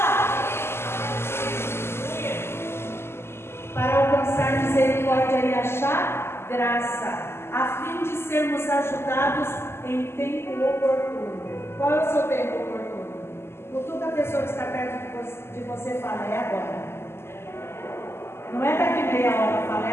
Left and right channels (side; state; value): right; late; 0.12 ms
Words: Para alcançar misericórdia e achar graça, a fim de sermos ajudados em tempo oportuno. Qual é o seu tempo oportuno? Cutuca a pessoa que está perto de você e fala: é agora. Não é daqui meia hora, fala: é